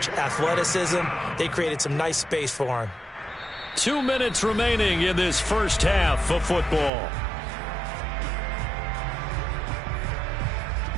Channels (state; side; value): drops out; left; at 6.9 s